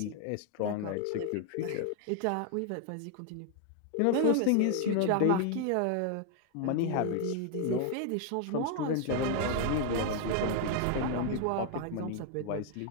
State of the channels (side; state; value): both; different; correlation 0.00